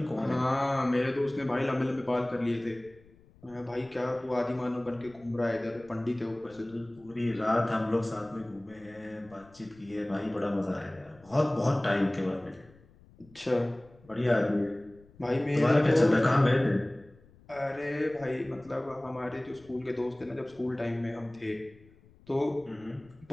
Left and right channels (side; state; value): left; noise; rumble, 26 dB below the sound